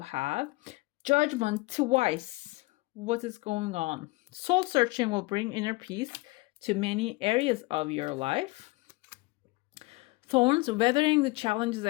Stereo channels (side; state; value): right; quieter; 23.3 dB